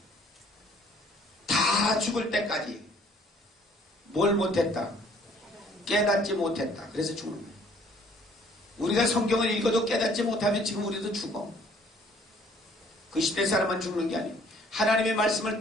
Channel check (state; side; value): normal; both; correlation 0.59